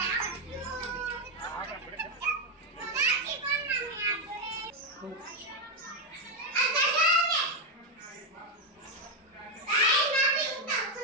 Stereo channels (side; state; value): both; normal; correlation 0.05